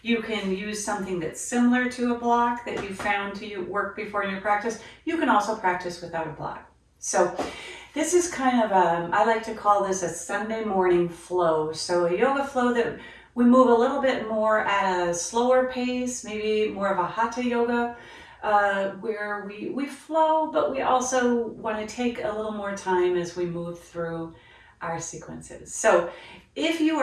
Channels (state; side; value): identical; both; correlation 1.00